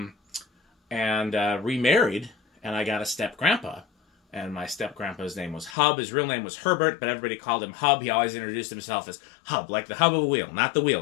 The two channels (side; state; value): right; drops out; at 5.8 s